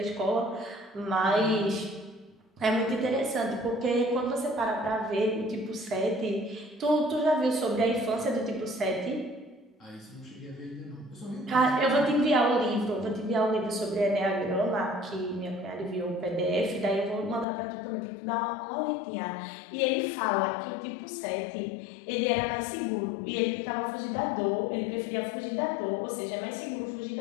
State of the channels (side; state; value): right; drops out; at 17.4 s